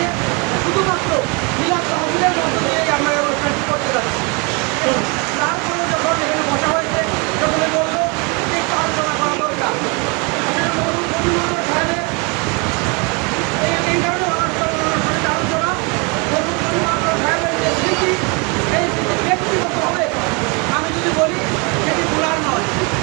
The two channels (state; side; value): quieter; left; 31.0 dB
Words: শুধুমাত্র মিলাদ তহবিলের মধ্য দিয়েই আমরা এই অনুষ্ঠানটি করতে যাচ্ছি। তারপরে যখন এখানে বসা হয়েছে, সকলে বলল যে একটু আলোচনা করা দরকার। সাহেবের এই কারণে আলোচনা সাহেবের যে স্মৃতি, এই স্মৃতি ব্যক্তিগতভাবে আমি যদি বলি সেটি ভুলার নয়।